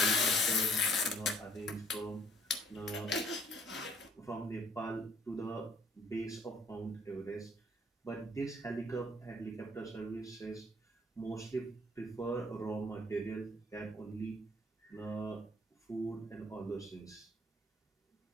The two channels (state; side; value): normal; both; correlation 0.60